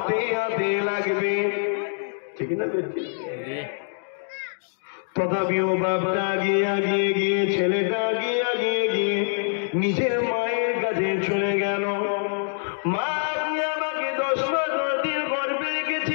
হাতে লাগবে, ঠিক না? তথাপিও বাপটা আগিয়ে গিয়ে ছেলেটা আগিয়ে গিয়ে নিজের মায়ের কাছে চলে গেল। মা, আপনি আমাকে 10 মাস 10 দিন গর্ভে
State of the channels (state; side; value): silent; right; digital silence